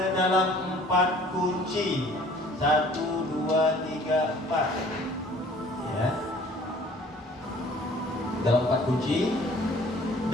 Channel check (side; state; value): both; normal; correlation 0.53